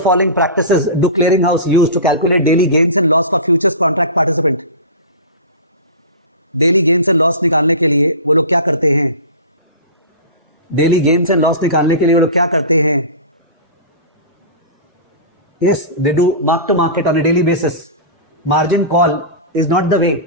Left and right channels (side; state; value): both; inverted; correlation -0.30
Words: following practices do clearinghouse use to calculate daily gains and loss for futures contract participant? Daily gains and loss निकालने के लिए वो लोग क्या करते हैं? डेली गेन्स एंड लॉस निकालने के लिए वो लोग क्या करते हैं? Yes, they do mark to market on a daily basis. Margin call is not the way.